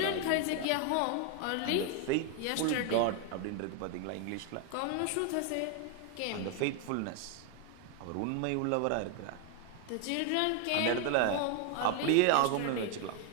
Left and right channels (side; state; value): both; different; correlation 0.01